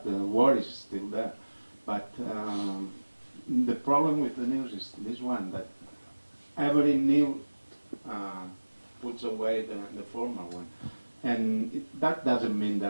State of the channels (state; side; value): inverted; both; correlation -1.00